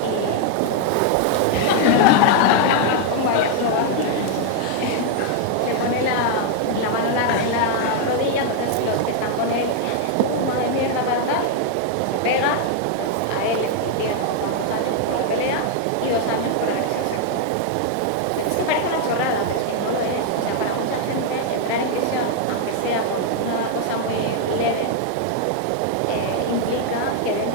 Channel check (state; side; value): different; both; correlation 0.00